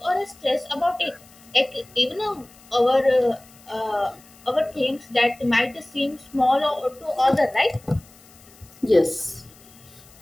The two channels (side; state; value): left; noise; hiss, 25 dB below the sound